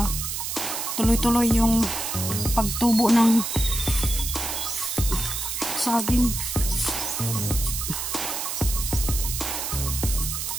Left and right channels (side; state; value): right; noise; hiss, 3 dB below the sound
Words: tuloy-tuloy yung pagtubo ng saging.